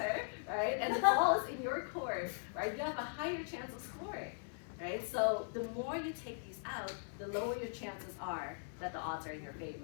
right? right? And the ball is in your court, right? You have a higher chance of scoring, right? So the more you take these out, the lower your chances are that the odds are in your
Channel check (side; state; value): right; silent; digital silence